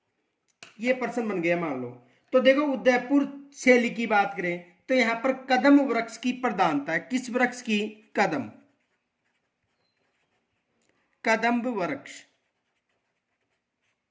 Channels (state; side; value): identical; both; correlation 1.00